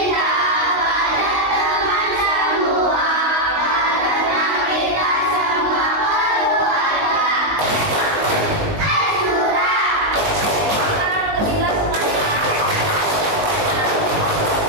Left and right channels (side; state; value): left; late; 19 ms